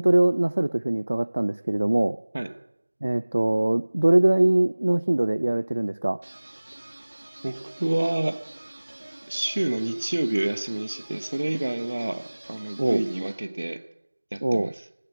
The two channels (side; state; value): both; inverted; correlation -1.00